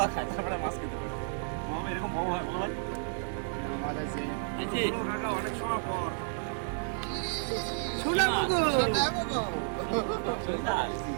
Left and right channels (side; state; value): left; silent; 57 dB below the other